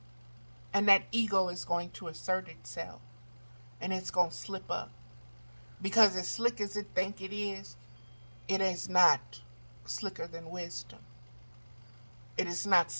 And that ego is going to assert itself. And it's going to slip up. Because as slick as it think it is not slicker than wisdom. It is not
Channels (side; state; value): both; inverted; correlation -1.00